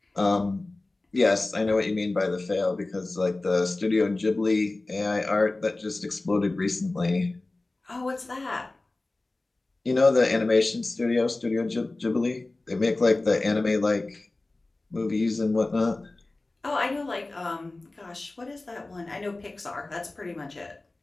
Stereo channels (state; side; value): quieter; right; 3.0 dB